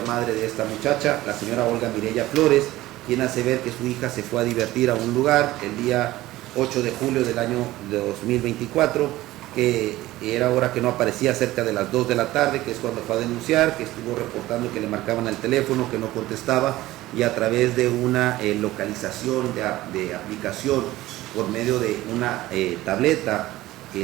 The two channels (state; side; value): quieter; left; 16.8 dB